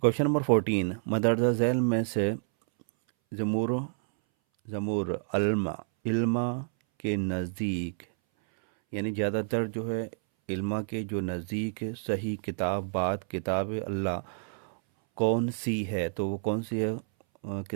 नंबर 14, मदरजा झैल में से जमूर जमूर अल्मा इल्मा के नज़दीक, यानी ज़्यादातर जो है इल्मा के जो नज़दीक सही किताब बात किताब अल्लाह कौन सी है? तो वो कौन सी है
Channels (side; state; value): left; silent; 58 dB below the other